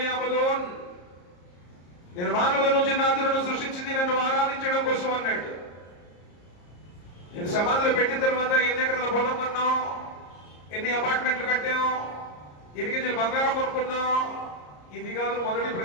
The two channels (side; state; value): right; late; 34 ms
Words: నేను మానవుల నుంచి జిన్నాతులను సృష్టించింది నన్ను ఆరాధించడం కోసం అన్నాడు. నేను సమాధిలో పెట్టిన తర్వాత ఎన్ని ఎకరాల పొలం కొన్నాం, ఎన్ని అపార్ట్మెంట్లు కట్టాం, ఎన్ని కేజీలు బంగారం కొనుక్కున్నాం, ఇది కాదు మొదటి